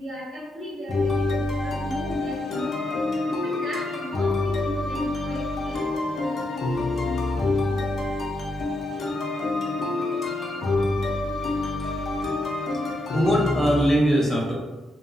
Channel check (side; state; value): both; normal; correlation 0.82